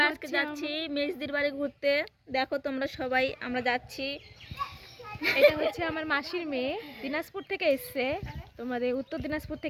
আজকে যাচ্ছি মেজদির বাড়ি ঘুরতে। দেখো তোমরা সবাই, আমরা যাচ্ছি। এটা হচ্ছে আমার মাসির মেয়ে, দিনাজপুর থেকে এসছে, তোমাদের উত্তর দিনাজপুর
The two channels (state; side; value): identical; both; correlation 1.00